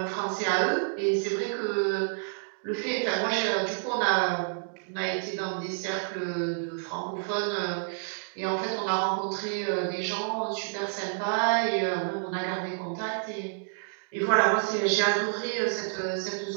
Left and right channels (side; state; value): left; silent; digital silence